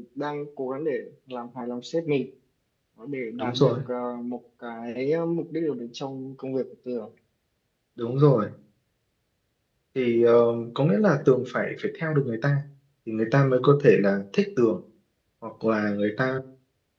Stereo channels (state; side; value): identical; both; correlation 1.00